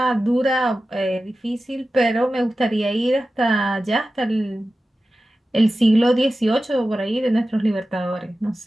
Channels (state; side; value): normal; both; correlation 0.94